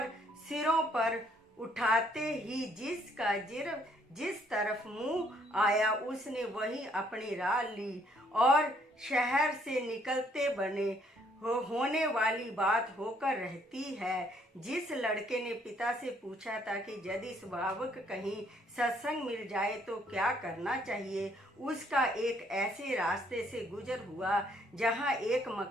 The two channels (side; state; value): both; normal; correlation 0.67